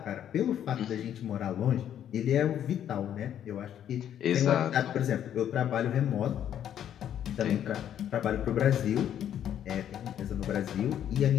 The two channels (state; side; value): quieter; right; 10.1 dB